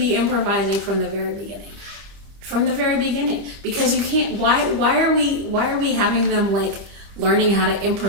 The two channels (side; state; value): left; late; 25 ms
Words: improvising from the very beginning. From the very beginning. Because you can't, why are we having them learning how to